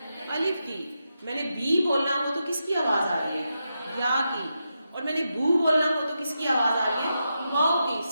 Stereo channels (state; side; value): inverted; both; correlation -0.86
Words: الف کی. میں نے بی بولنا ہو تو کس کی آواز آ رہی ہے؟ یا کی. اور میں نے بو بولنا ہو تو کس کی آواز آ رہی ہے؟ واؤ کی.